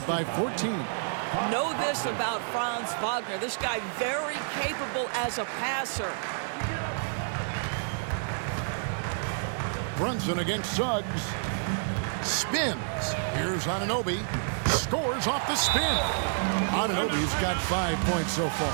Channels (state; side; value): silent; left; digital silence